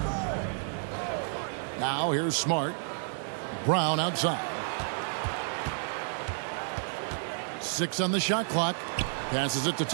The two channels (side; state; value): left; silent; 57 dB below the other